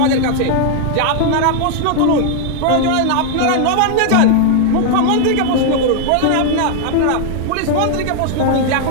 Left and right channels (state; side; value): different; both; correlation 0.00